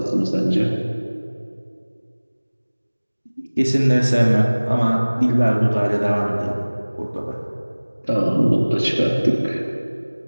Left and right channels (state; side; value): inverted; both; correlation -1.00